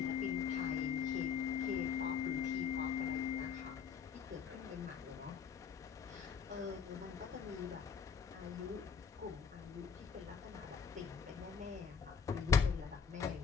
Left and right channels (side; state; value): right; quieter; 6.6 dB